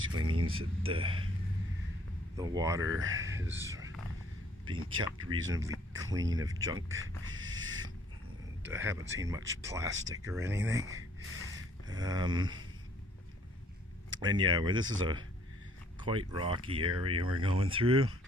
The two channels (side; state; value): both; normal; correlation 0.61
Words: means that the water is being kept reasonably clean of junk. And I haven't seen much plastic or anything. And yeah, where this is a quite rocky area we're going through.